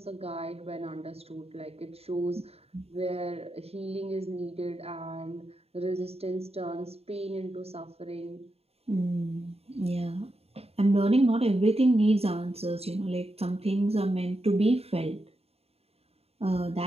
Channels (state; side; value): late; left; 0.29 ms